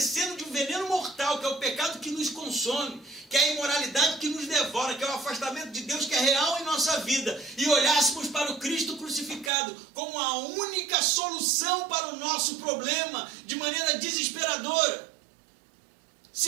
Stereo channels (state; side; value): drops out; left; at 9.5 s